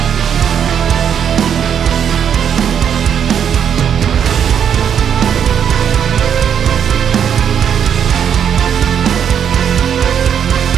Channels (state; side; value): quieter; left; 8.4 dB